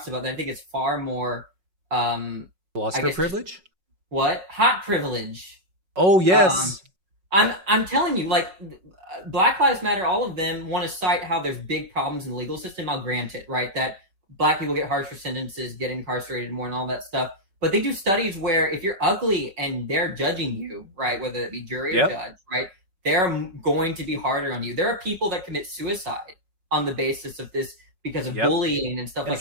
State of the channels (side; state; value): left; late; 5.4 ms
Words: about that I think is far more philosopher privilege? What? Hot privilege. Oh yes. I'm telling you, Black Lives Matter, all of them want to cite how there's big problems in the legal system. I'll grant it, right? That black people get harsher sentences, get incarcerated more and all that stuff. But they do studies where if you're ugly and they're judging you, right, whether it be jury or judge, right, they're going to be harder on you. There are people that commit suicide on the basis of this because of bullying and stuff like